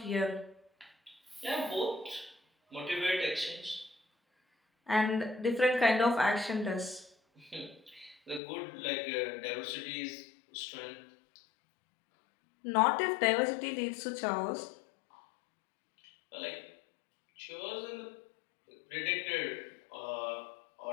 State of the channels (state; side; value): drops out; right; at 8.4 s